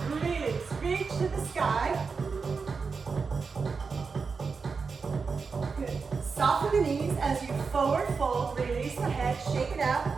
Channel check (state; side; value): quieter; left; 5.0 dB